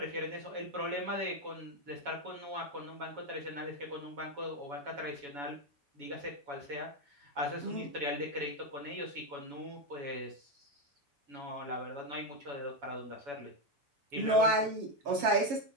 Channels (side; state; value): left; late; 7.3 ms